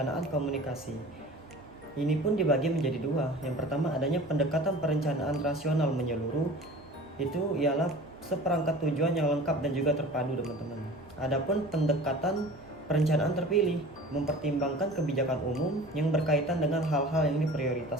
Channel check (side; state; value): both; normal; correlation 0.41